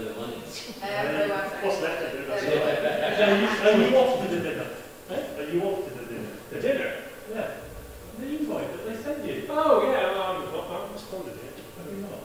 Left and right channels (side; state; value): both; identical; correlation 1.00